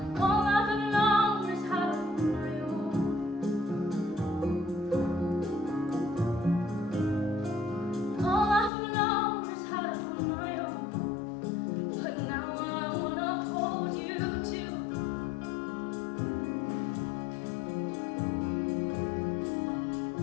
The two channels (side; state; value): right; drops out; at 8.7 s